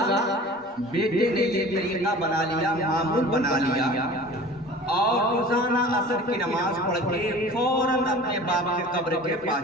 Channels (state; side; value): normal; both; correlation 0.41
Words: बेटे ने ये तरीका बना लिया, मामूल बना लिया, और रोजाना असर की नमाज पढ़ के फौरन अपने बाप के कब्र के पास